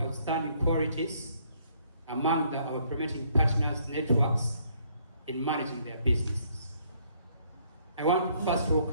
qualities among our implementing partners' networks in managing their businesses. I want to first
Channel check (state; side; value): inverted; both; correlation -0.67